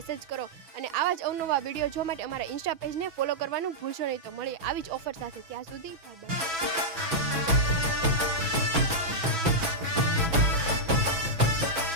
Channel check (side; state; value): left; late; 6.1 ms